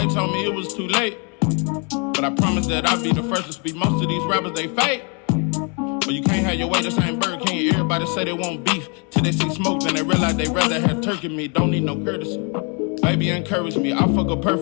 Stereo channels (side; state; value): right; quieter; 35.3 dB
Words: told me it was too late, but I promise that I'll be the first to speak. Most of these rappers, they fake. But you can't have your way, this ain't Burger King. Everybody say they want beef till they see smoke, then they realize they rather have turkey meat. Don't need no courtesy. Baby encourage me, I fuck her